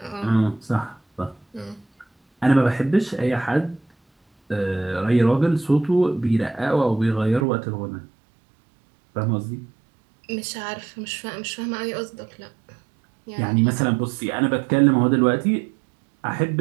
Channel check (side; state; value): left; drops out; at 7.5 s